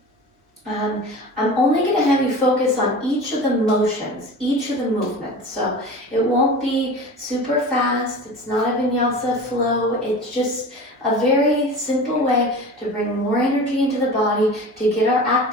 I'm only going to have you focus on each of the motions, each of the movements. So it won't be super fast. It's not a vinyasa flow. It's just a very simple way to bring more energy into the body, to get our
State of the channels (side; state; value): both; normal; correlation 0.35